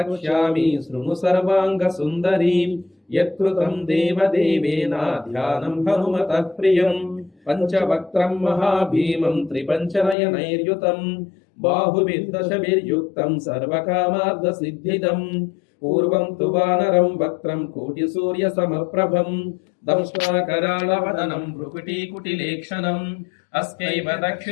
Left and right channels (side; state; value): right; drops out; at 10.2 s